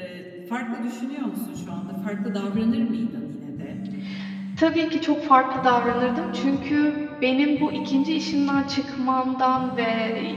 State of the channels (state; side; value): identical; both; correlation 1.00